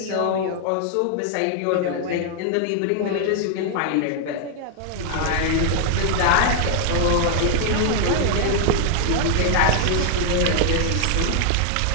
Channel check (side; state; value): both; different; correlation 0.00